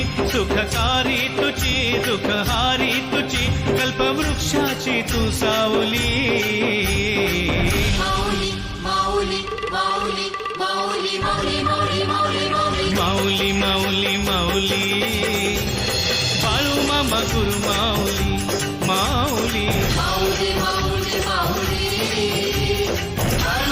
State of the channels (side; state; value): both; identical; correlation 1.00